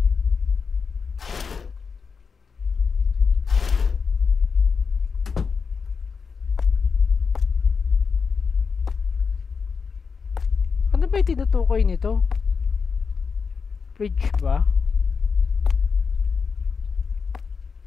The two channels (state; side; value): quieter; right; 5.5 dB